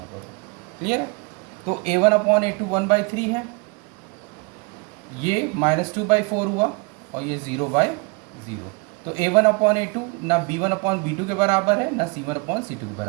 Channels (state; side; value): quieter; left; 29.2 dB